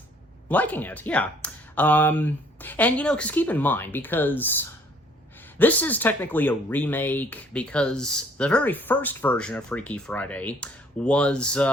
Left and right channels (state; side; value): normal; both; correlation 0.60